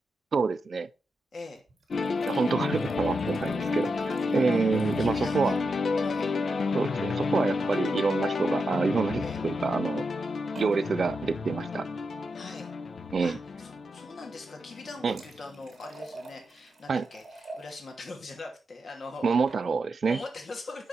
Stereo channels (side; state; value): both; normal; correlation 0.86